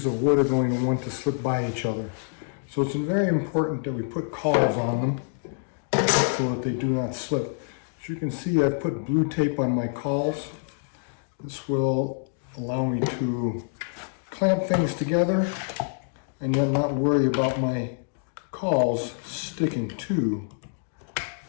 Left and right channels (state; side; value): silent; right; digital silence